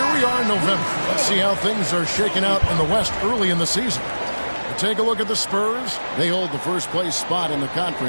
we are in November. Let's see how things are shaking out in the West early in the season. Take a look at the Spurs. They hold the first place spot in the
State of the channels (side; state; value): both; inverted; correlation -1.00